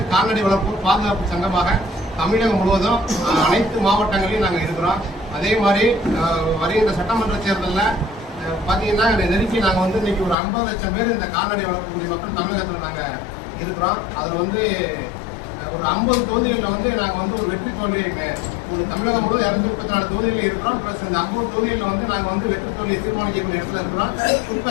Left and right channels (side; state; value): right; drops out; at 10.4 s